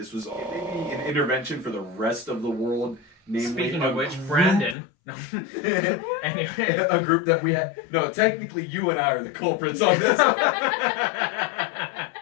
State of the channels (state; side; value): drops out; right; at 4.8 s